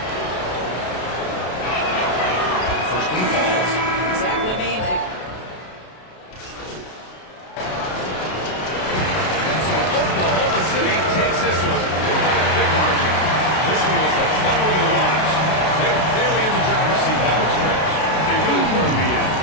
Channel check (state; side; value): late; right; 32 ms